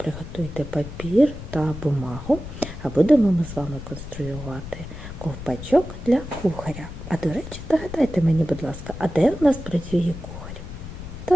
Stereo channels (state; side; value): noise; left; rumble, 11 dB below the sound